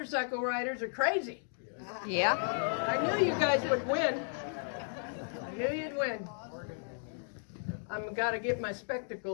riders are crazy? Yeah. I knew you guys would win. I knew you'd win. I've got to get my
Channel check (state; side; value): silent; right; digital silence